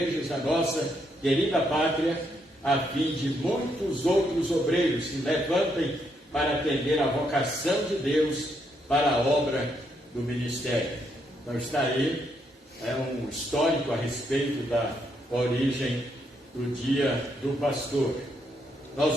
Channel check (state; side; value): normal; both; correlation 0.76